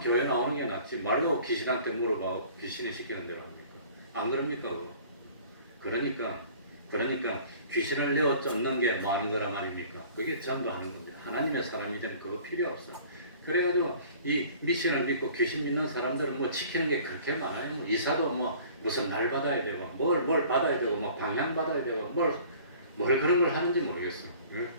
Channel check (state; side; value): inverted; both; correlation -0.49